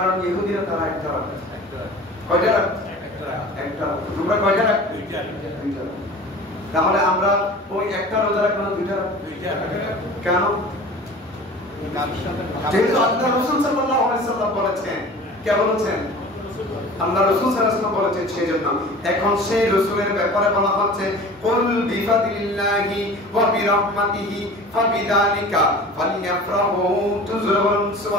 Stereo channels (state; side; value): normal; both; correlation 0.40